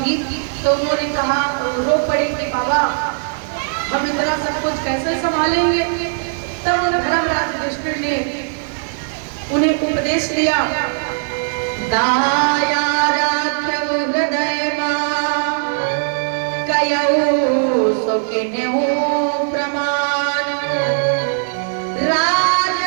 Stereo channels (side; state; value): left; silent; digital silence